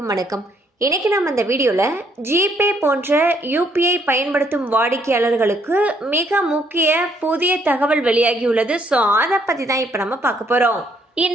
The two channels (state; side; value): normal; both; correlation 0.69